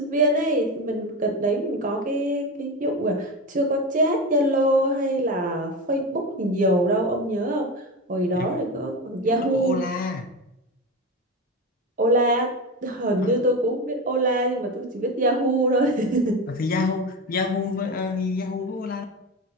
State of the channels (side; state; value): both; normal; correlation 0.21